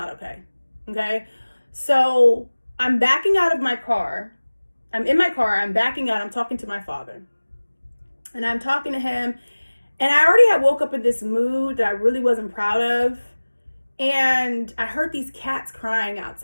okay. Okay? So I'm backing out of my car. I'm in my car. I'm backing out. I'm talking to my father. And I'm talking to him, and I already had woke up in this mood that I really wasn't proud of. And I heard these cats crying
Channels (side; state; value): both; inverted; correlation -1.00